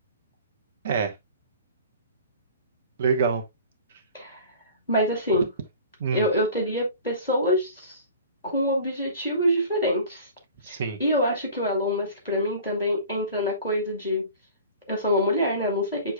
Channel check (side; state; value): both; inverted; correlation -0.43